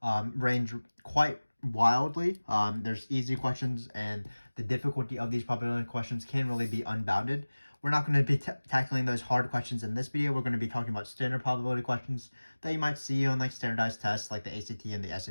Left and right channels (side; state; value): both; inverted; correlation -1.00